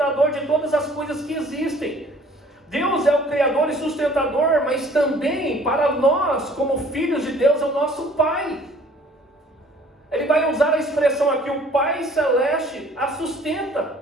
de todas as coisas que existem. Deus é o Criador e sustentador, mas também para nós, como filhos de Deus, é o nosso Pai. Ele vai usar a expressão aqui, o Pai Celeste a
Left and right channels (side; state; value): both; normal; correlation 0.54